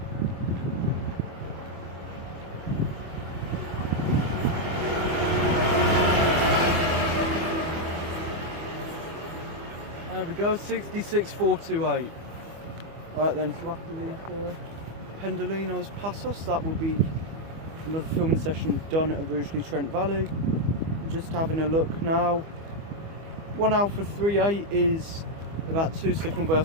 There we go, 66428. Alright then, so after these Pendolinos pass us, that will be another filming session done at Rugeley Trent Valley. Just having a look now. 1 Alpha 38 is about 2 signal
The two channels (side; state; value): left; late; 25 ms